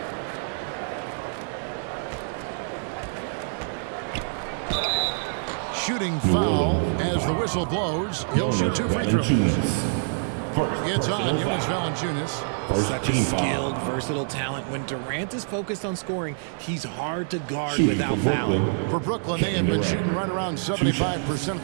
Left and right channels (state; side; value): silent; left; digital silence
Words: Shooting foul as the whistle blows. He'll shoot 2 free throws. It's on Jonas Valanciunas. Such a skilled, versatile talent. When Durant is focused on scoring, he's hard to guard without fouling. For Brooklyn, they have been shooting right around 75% at